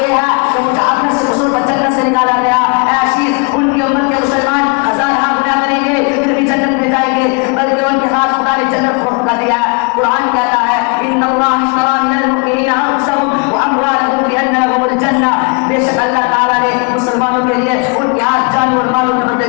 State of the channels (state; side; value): quieter; right; 32.8 dB